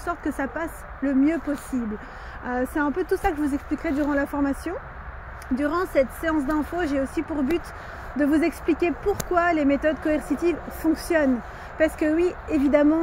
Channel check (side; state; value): both; identical; correlation 1.00